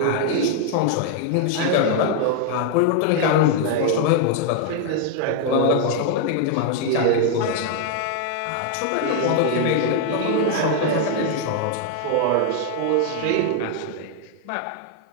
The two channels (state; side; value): different; both; correlation 0.00